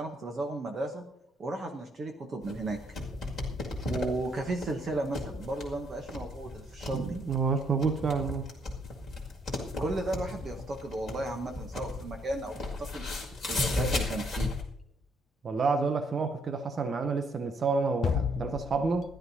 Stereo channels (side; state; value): both; normal; correlation 0.71